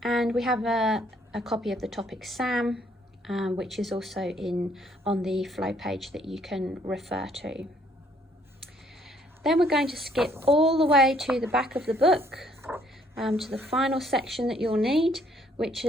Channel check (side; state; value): both; normal; correlation 0.65